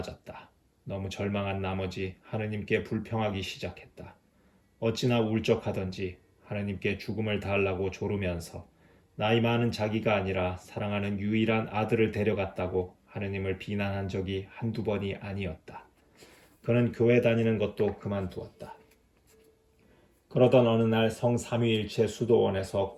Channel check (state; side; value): identical; both; correlation 1.00